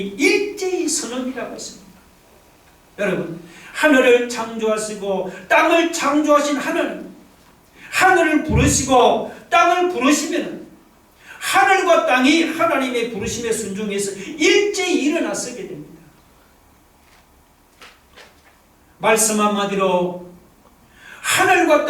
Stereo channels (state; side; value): identical; both; correlation 1.00